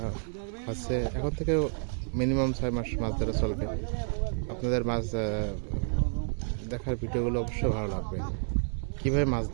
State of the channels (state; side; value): silent; left; 58 dB below the other